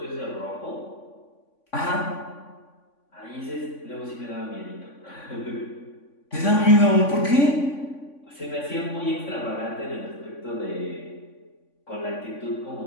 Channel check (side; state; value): right; late; 3.5 ms